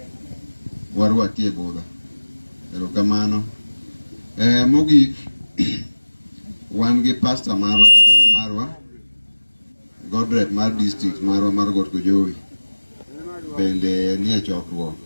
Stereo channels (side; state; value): both; inverted; correlation -1.00